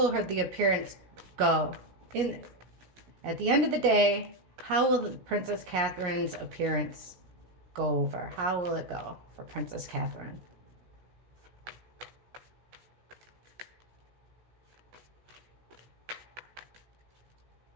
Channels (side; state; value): left; late; 17 ms